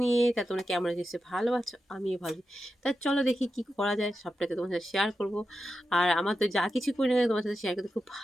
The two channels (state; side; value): normal; both; correlation 0.89